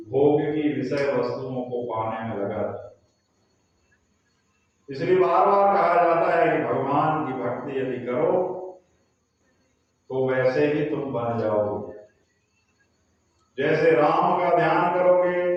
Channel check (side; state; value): both; identical; correlation 1.00